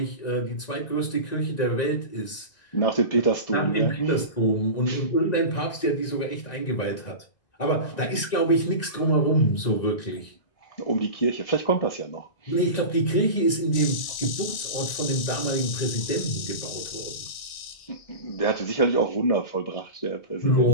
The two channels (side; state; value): right; late; 1.9 ms